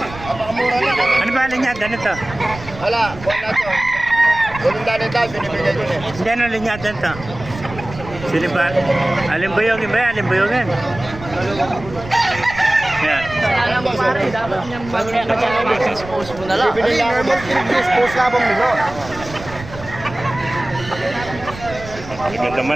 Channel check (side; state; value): right; noise; rumble, 14 dB below the sound